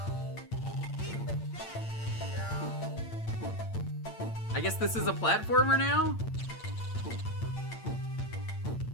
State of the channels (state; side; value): late; right; 8.8 ms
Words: I guess this is a platformer now?